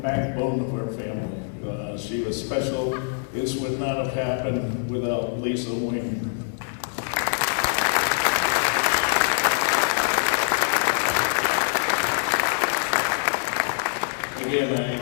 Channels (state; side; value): silent; right; 62 dB below the other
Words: of our family. She was special. This would not have happened without Lisa Wing. Again,